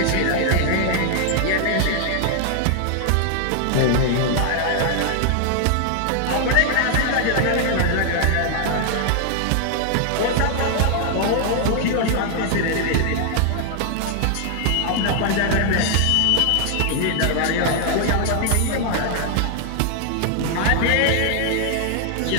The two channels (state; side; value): different; both; correlation 0.00